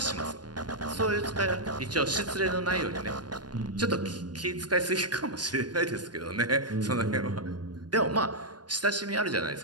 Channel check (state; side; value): late; left; 0.70 ms